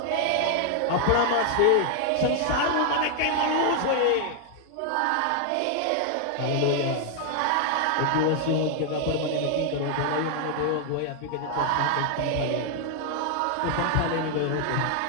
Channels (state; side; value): different; both; correlation 0.00